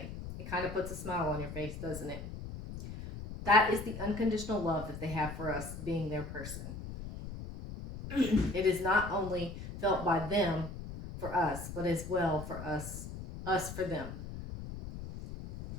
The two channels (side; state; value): left; noise; rumble, 9 dB below the sound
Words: It kind of puts a smile on your face, doesn't it? That is the unconditional love that they have for us being their person. It is not only felt by them for us, but as well for us for them.